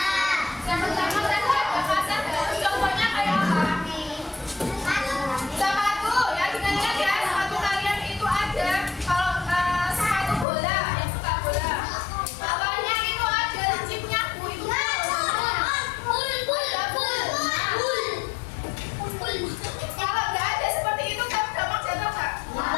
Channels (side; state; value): right; drops out; at 10.5 s